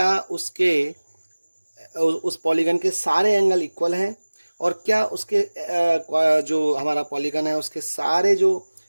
उसके उस पॉलीगन के सारे एंगल इक्वल हैं, और क्या उसके जो हमारा पॉलीगन है उसके सारे जो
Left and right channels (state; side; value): inverted; both; correlation -1.00